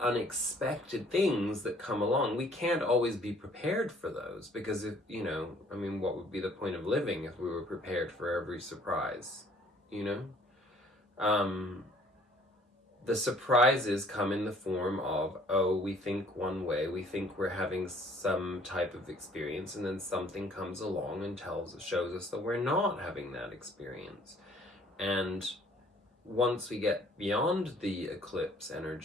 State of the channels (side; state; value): both; normal; correlation 0.58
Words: unexpected things that come along. We can't always be prepared for those, because if, you know, I mean, what would be the point of living if we were prepared for every surprise, you know? The surprises come in the form of, oh, we think one way, we think we're having some type of experience, and then something comes along and shows us that we're not having that experience. And once we get beyond the eclipse